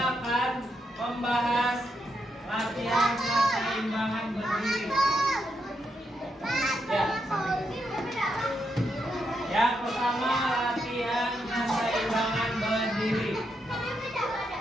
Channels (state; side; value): normal; both; correlation 0.81